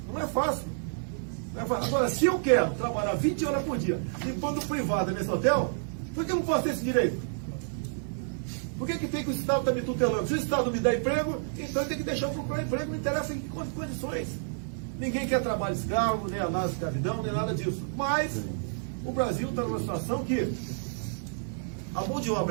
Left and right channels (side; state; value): left; silent; 57 dB below the other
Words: Não é fácil. Não é fácil. Agora, se eu quero trabalhar 20 horas por dia enquanto privado nesse hotel, por que eu não posso ter esse direito? Por que tem que o Estado estar me tutelando? Se o Estado me dá emprego, então ele tem que deixar eu procurar emprego, não interessa em que condições. Ninguém quer trabalho escravo, nem análise de escravidão, nem nada disso. Mas o Brasil está numa situação que a mão de